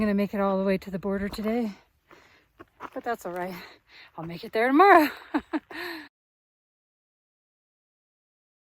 gonna make it all the way to the border today, but that's all right. I'll make it there tomorrow.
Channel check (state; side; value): identical; both; correlation 1.00